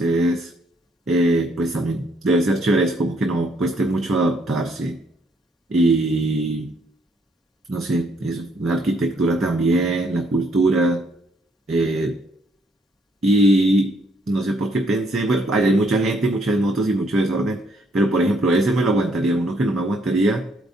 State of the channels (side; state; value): both; normal; correlation 0.69